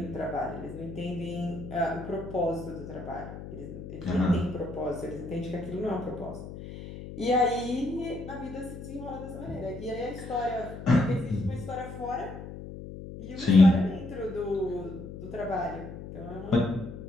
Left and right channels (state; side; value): noise; left; hum, 11 dB below the sound